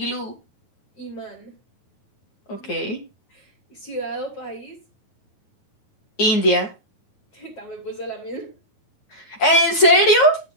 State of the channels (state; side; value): late; right; 9.5 ms